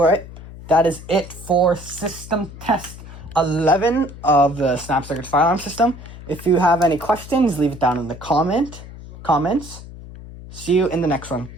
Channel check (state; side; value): noise; left; hum, 15 dB below the sound